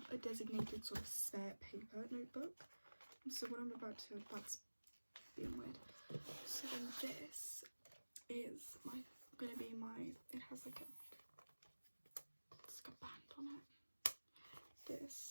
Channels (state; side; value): inverted; both; correlation -1.00